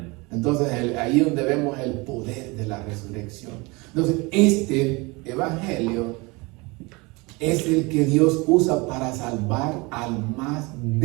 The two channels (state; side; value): quieter; left; 25.7 dB